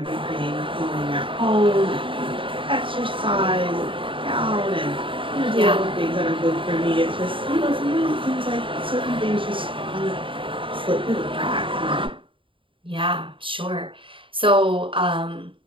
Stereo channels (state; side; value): late; left; 0.25 ms